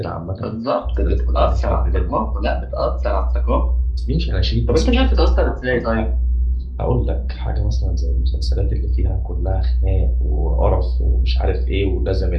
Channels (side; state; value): both; identical; correlation 1.00